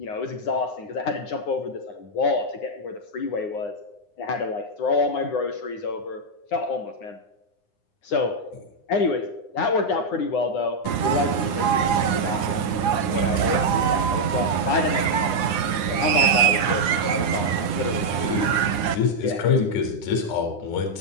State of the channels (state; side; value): late; right; 9.8 ms